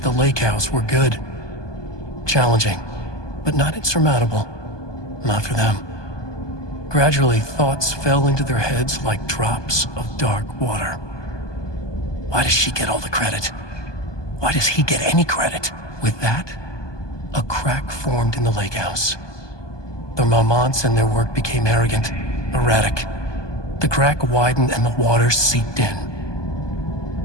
the lake house were good. Challenging, but not insurmountable. Not for them. Gradually, thoughts fell into their heads like drops of dark water. Why does she get all the credit? Why does he get any credit? With that, a crack formed in the lake house. The Marmonts and their work became arrogant, erratic. The crack widened and the water seeped in.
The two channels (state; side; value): late; right; 1.2 ms